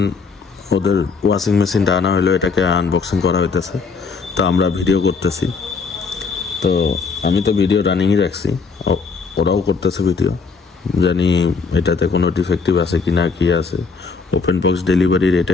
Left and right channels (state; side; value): quieter; right; 4.9 dB